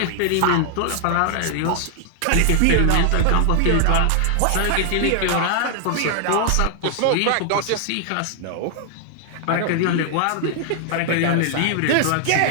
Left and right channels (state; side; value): different; both; correlation 0.00